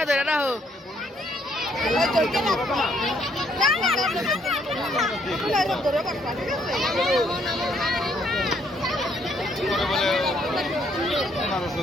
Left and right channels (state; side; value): normal; both; correlation 0.69